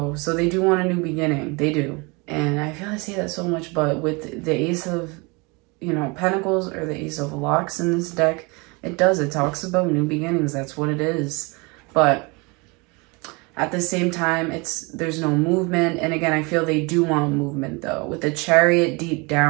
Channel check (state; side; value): quieter; left; 28.2 dB